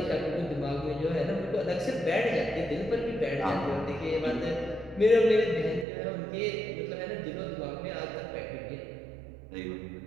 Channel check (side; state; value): left; drops out; at 5.9 s